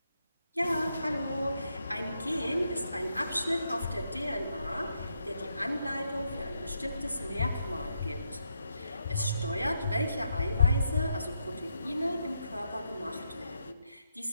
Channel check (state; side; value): inverted; both; correlation -0.81